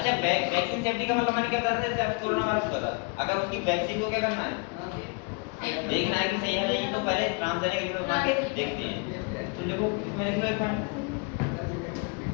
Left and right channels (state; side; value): quieter; right; 32.1 dB